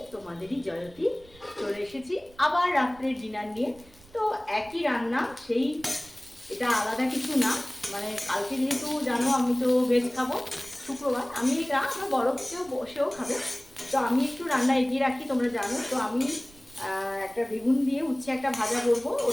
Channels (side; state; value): right; noise; rumble, 26 dB below the sound